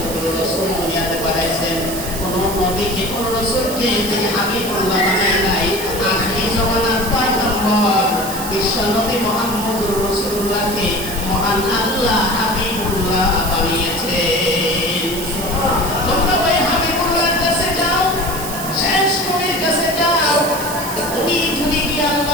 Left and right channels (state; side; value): noise; right; hiss, 8 dB below the sound